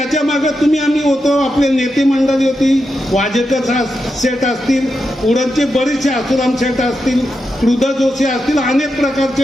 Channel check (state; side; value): normal; both; correlation 0.87